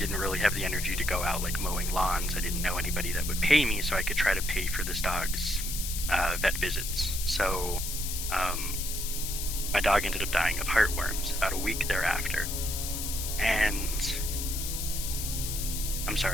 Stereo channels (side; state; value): left; noise; hiss, 4 dB below the sound